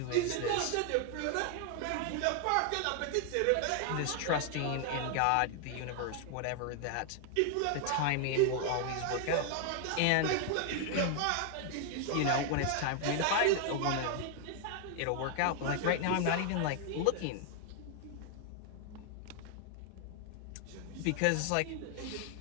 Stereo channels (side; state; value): both; different; correlation 0.00